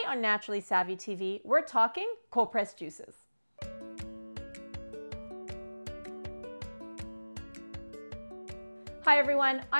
on Naturally Savvy TV, we're talking cold-pressed juices. Hi everyone,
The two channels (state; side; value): inverted; both; correlation -1.00